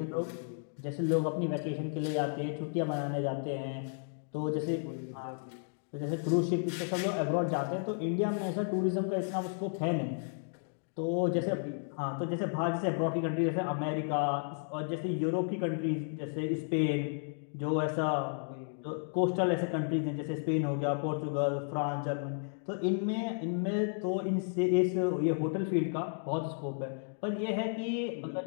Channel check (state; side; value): silent; right; digital silence